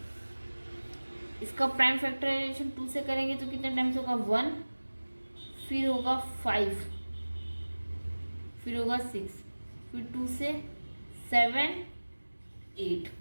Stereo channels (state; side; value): inverted; both; correlation -1.00